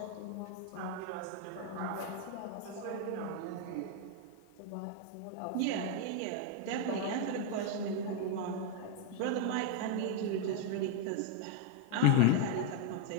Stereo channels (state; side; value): different; both; correlation 0.00